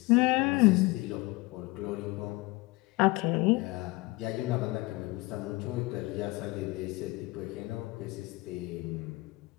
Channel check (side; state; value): right; quieter; 22.6 dB